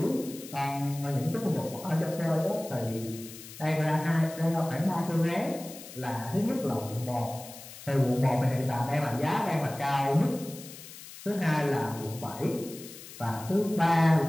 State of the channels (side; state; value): left; noise; hiss, 15 dB below the sound